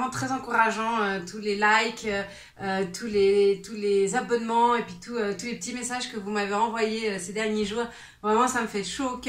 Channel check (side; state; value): both; identical; correlation 1.00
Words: très encourageant, tous les likes, tous les abonnements et puis tous les petits messages que vous m'avez envoyés ces derniers jours, vraiment ça me fait chaud au